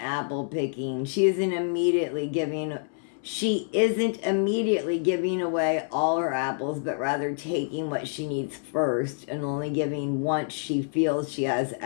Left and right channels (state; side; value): silent; right; 60 dB below the other